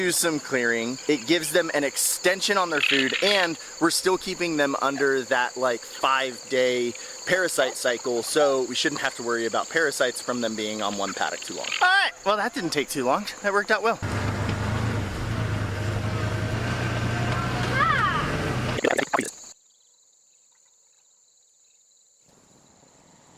some clearing. It gives them an extension on their food and we're still keeping them under that like 5-day parasite cycle, so we shouldn't have to worry about parasites from them being on one paddock too long. All right, well that didn't take too long. That worked out well.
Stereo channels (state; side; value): identical; both; correlation 1.00